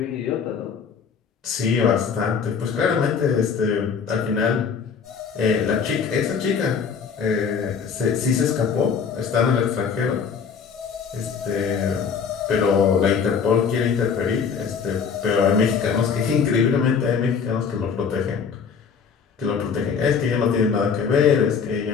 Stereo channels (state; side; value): quieter; right; 6.3 dB